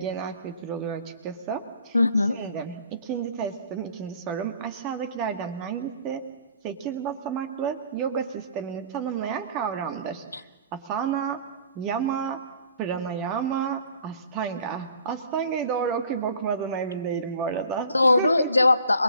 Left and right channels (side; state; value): both; inverted; correlation -0.50